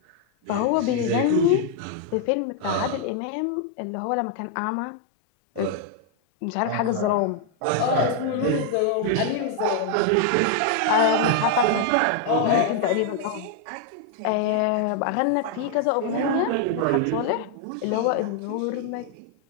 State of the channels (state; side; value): different; both; correlation 0.00